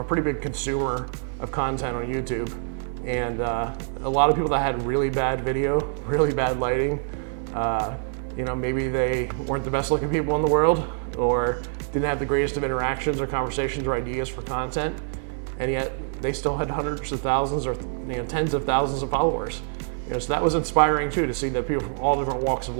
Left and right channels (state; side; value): silent; left; digital silence